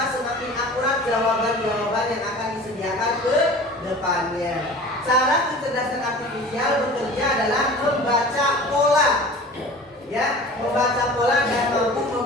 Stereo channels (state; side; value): normal; both; correlation 0.41